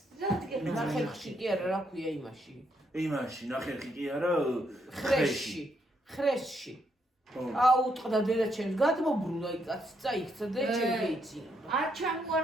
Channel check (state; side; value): normal; both; correlation 0.76